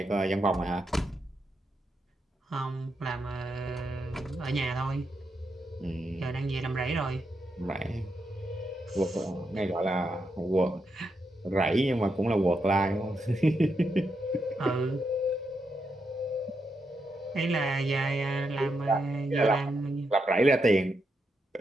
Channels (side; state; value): both; normal; correlation 0.83